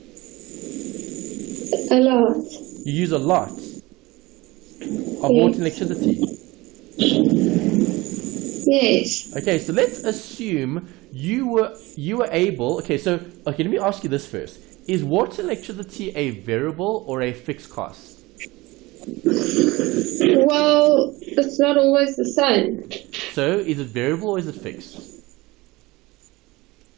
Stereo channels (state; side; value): quieter; left; 21.2 dB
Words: A lot. You use a lot of water and electricity. Yes. Okay, so let's assume you were able. Okay, let me ask you this first: is water and electricity a variable or a fixed cost? Well, it's not always the same. So, is it variable or is it fixed?